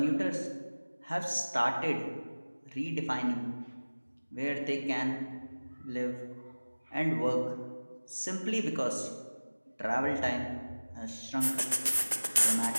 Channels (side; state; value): both; inverted; correlation -1.00